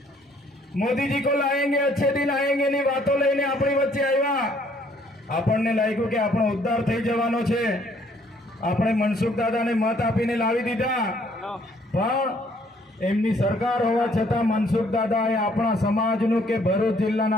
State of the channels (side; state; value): both; normal; correlation 0.63